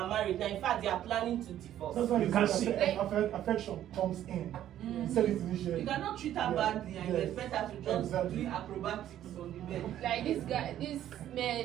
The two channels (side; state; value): left; quieter; 11.8 dB